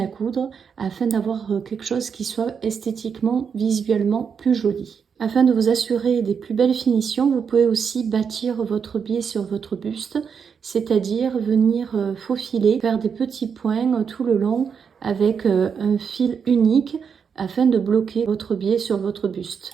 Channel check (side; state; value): left; quieter; 6.6 dB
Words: coudre, afin d'avoir quelque chose qui soit esthétiquement, visuellement plus joli. Afin de vous assurer des plus belles finitions, vous pouvez aussi bâtir votre biais sur votre buste, c'est-à-dire venir faufiler, faire des petits points tout le long avec un fil unique afin de bloquer votre biais sur votre buste.